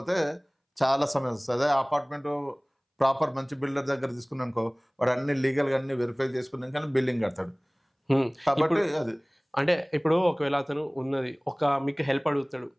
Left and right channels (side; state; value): both; identical; correlation 1.00